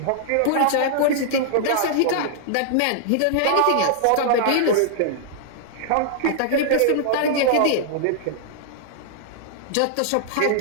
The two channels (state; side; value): different; both; correlation -0.01